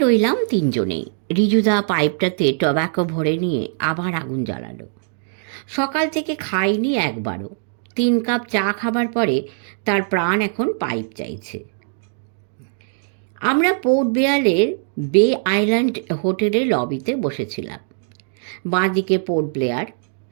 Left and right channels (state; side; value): silent; left; digital silence